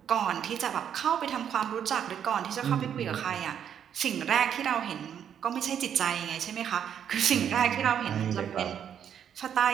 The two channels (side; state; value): left; quieter; 8.8 dB